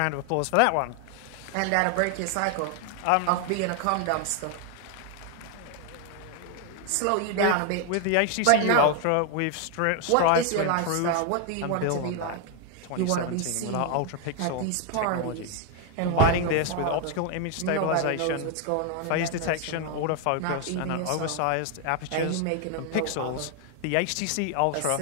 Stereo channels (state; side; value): different; both; correlation 0.01